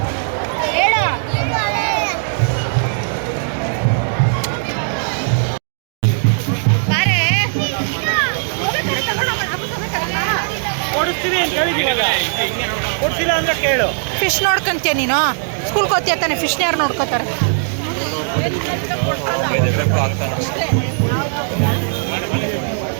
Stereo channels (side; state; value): left; silent; digital silence